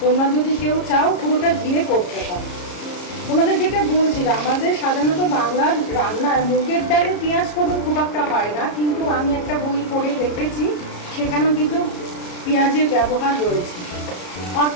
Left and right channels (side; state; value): right; late; 34 ms